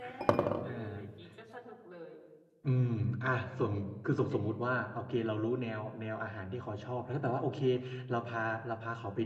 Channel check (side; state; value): both; identical; correlation 1.00